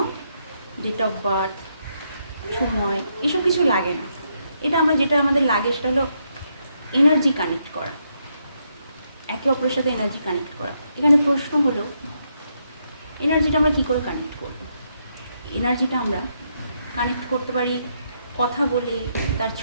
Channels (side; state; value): both; inverted; correlation -0.78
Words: ডেট অফ বার্থ, সময়, এসব কিছু লাগে না। এটা যেটা আমাদের লাগে সেটা হলো এনার্জি কানেক্ট করা, একে অপরের সাথে এনার্জি কানেক্ট করা। এখানে প্রশ্ন হলো, এনার্জিটা আমরা কী করে কানেক্ট করব? এনার্জিটা আমরা কানেক্ট করতে পারি কথা বলে, তার